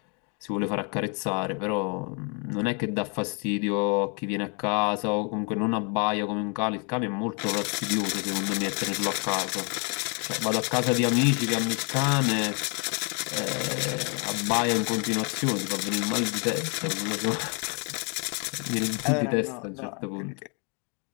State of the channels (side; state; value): right; quieter; 36.4 dB